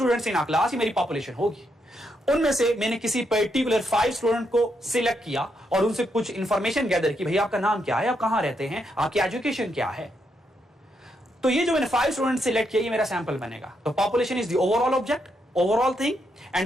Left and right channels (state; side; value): normal; both; correlation 0.79